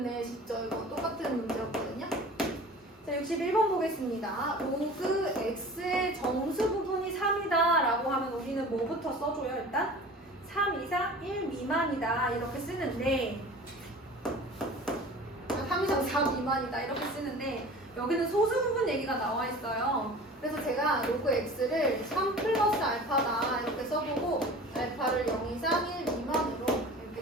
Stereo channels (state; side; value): normal; both; correlation 0.40